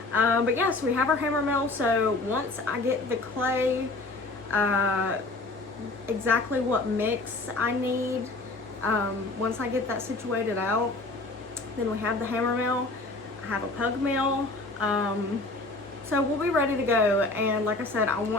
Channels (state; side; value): quieter; right; 3.2 dB